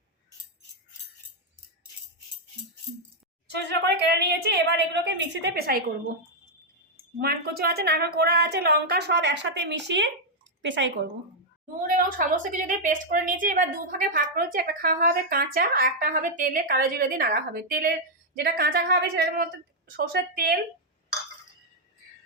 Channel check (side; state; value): both; normal; correlation -0.02